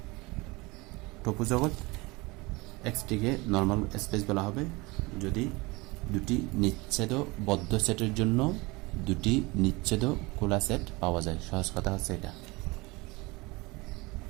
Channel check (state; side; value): quieter; left; 24.0 dB